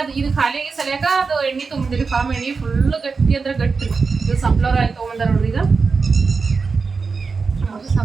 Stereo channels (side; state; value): left; quieter; 4.8 dB